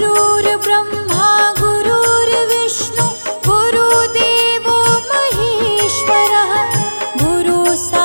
गुरुर्विष्णु गुरुदेवो महेश्वरः गुरु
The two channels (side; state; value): both; inverted; correlation -1.00